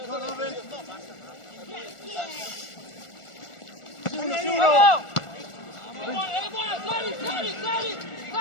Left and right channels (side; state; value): right; late; 1.4 ms